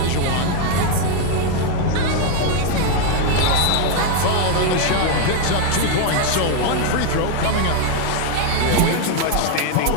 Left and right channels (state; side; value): different; both; correlation 0.01